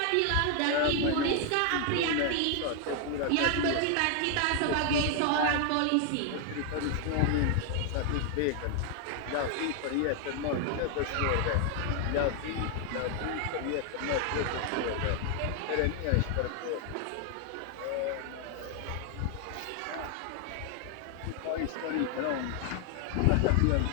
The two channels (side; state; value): both; different; correlation 0.00